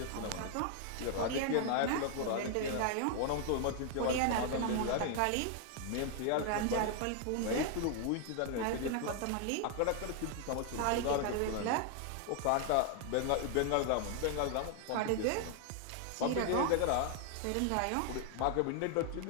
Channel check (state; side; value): different; both; correlation 0.00